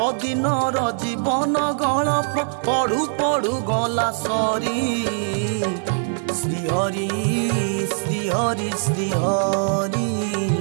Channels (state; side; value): silent; left; 62 dB below the other